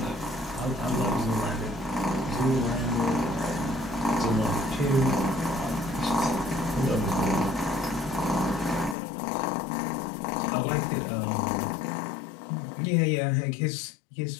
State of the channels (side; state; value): right; drops out; at 9.0 s